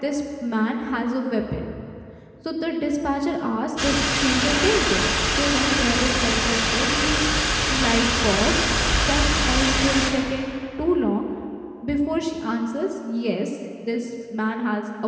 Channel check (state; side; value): identical; both; correlation 1.00